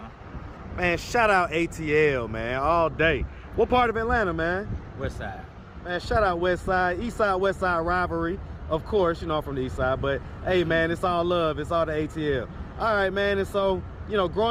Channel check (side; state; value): both; identical; correlation 1.00